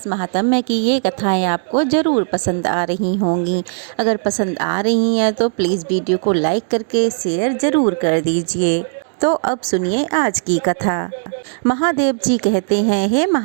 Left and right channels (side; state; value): left; silent; 68 dB below the other